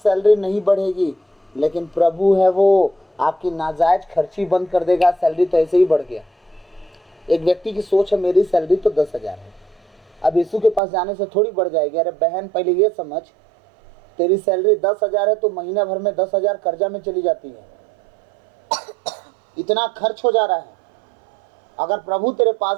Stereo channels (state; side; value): drops out; left; at 10.8 s